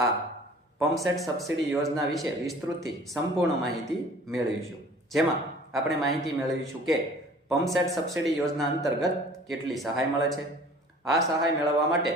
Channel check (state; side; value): normal; both; correlation 0.48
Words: પંપ સેટ સબસિડી યોજના વિશે વિસ્તૃતથી સંપૂર્ણ માહિતી મેળવીશું, જેમાં આપણે માહિતી મેળવીશું કે પંપ સેટ સબસિડી યોજના અંતર્ગત કેટલી સહાય મળે છે, આ સહાય મેળવવા માટે